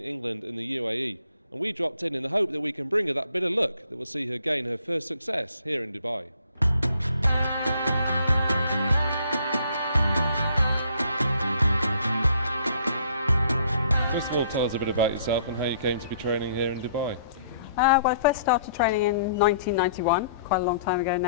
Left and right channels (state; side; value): inverted; both; correlation -0.62